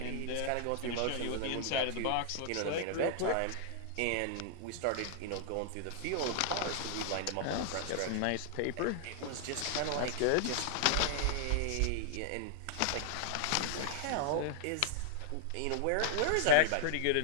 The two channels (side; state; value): both; different; correlation -0.01